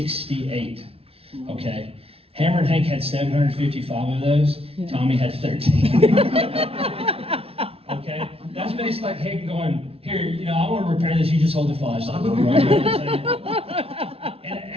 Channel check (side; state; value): left; late; 0.28 ms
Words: okay? Hammer and Hank had 755 of those. Tommy had 13. Okay? That's basically like Hank going, here, you know, I want to repair this, you just hold the flashlight. Right? And